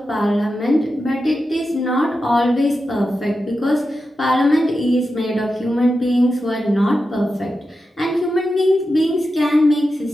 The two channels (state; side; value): normal; both; correlation 0.90